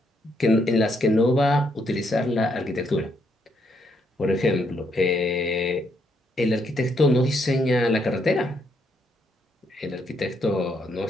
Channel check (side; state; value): both; normal; correlation 0.74